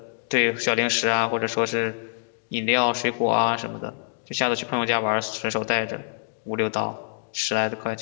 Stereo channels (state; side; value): silent; right; digital silence